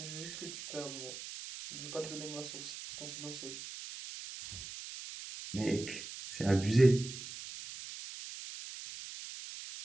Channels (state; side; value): noise; right; hiss, 10 dB below the sound